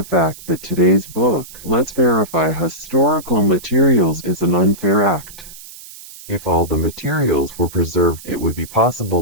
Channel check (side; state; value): right; noise; hiss, 17 dB below the sound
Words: fact that today's book, Let's Verify Historical Materials, is an unfair act. If all the materials were preserved, it would be